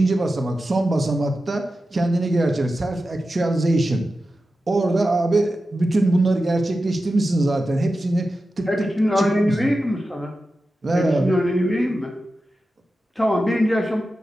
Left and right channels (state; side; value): normal; both; correlation 0.92